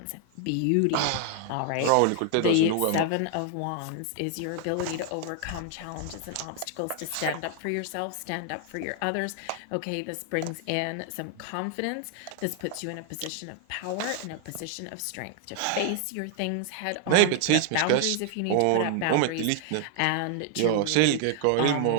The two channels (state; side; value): different; both; correlation 0.00